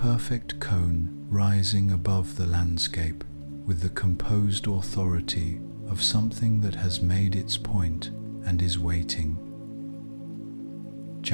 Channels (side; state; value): both; inverted; correlation -1.00